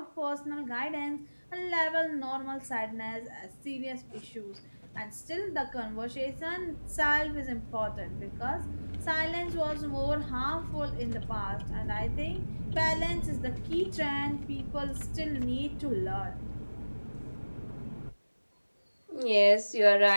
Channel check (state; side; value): inverted; both; correlation -1.00